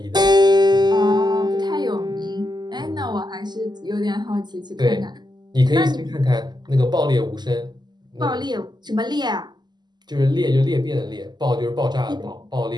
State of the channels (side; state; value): left; late; 0.21 ms